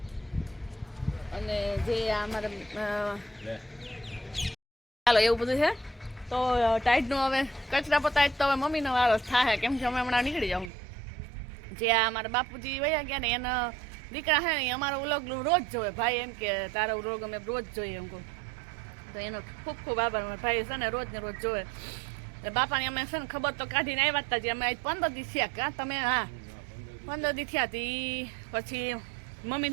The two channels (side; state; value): left; drops out; at 10.7 s